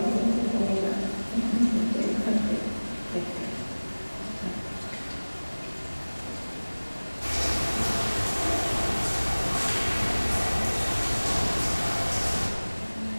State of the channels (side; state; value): both; inverted; correlation -1.00